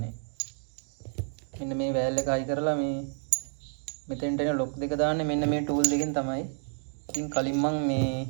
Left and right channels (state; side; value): silent; left; 58 dB below the other